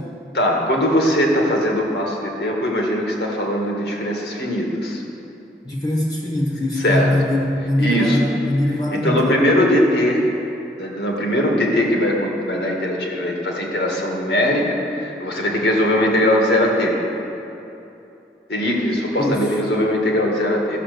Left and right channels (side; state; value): both; normal; correlation 0.55